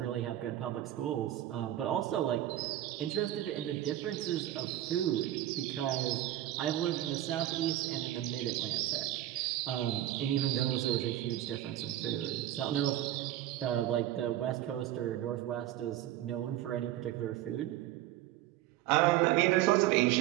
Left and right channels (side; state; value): left; quieter; 13.6 dB